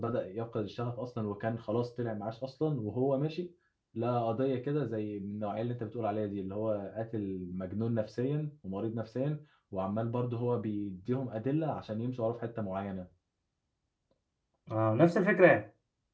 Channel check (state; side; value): identical; both; correlation 1.00